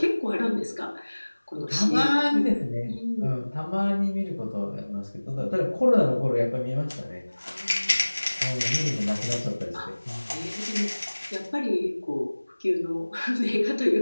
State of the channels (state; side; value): inverted; both; correlation -1.00